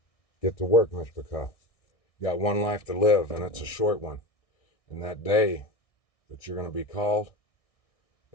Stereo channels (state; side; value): late; right; 1.6 ms